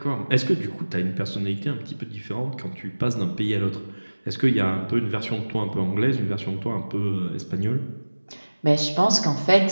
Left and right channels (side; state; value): both; inverted; correlation -1.00